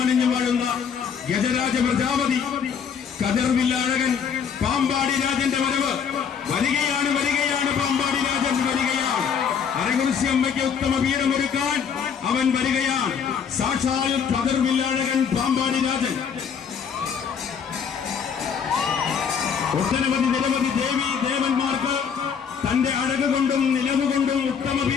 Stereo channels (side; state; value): right; quieter; 7.0 dB